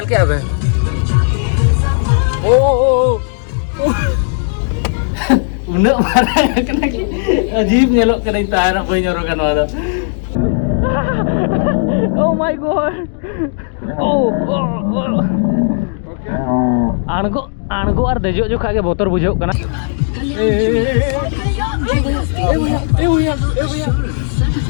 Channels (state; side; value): silent; right; digital silence